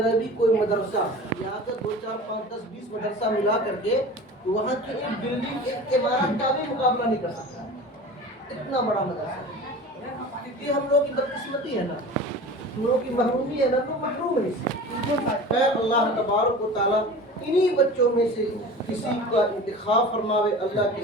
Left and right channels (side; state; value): both; normal; correlation 0.37